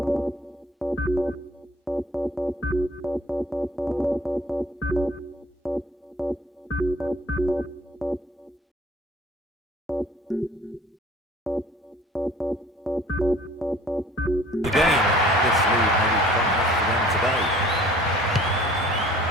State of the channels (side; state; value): both; normal; correlation 0.52